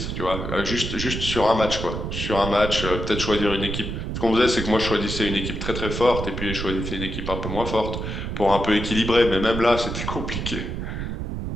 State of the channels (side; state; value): right; noise; rumble, 4 dB below the sound